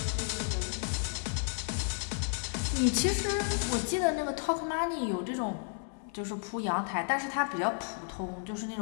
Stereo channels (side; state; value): right; silent; 56 dB below the other